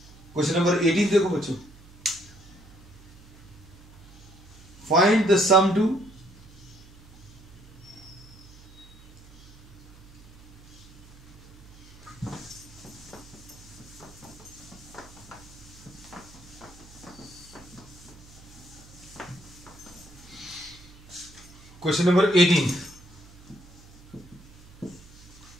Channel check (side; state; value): right; noise; hum, 22 dB below the sound